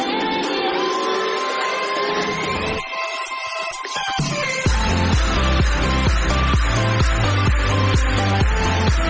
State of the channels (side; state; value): both; identical; correlation 1.00